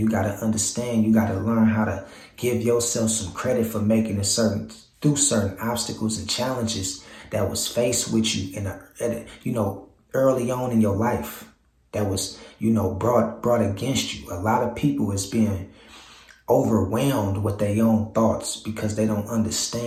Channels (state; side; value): identical; both; correlation 1.00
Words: got to understand, you got to learn how to give yourself some credit for making it through certain obstacles and challenges that was faced with you you know, early on in your life, that was, you know, brought against you. A lot of people is being overwhelmed with their own thoughts because they don't